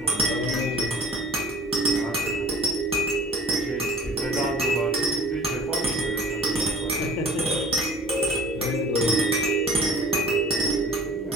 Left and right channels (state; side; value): normal; both; correlation 0.46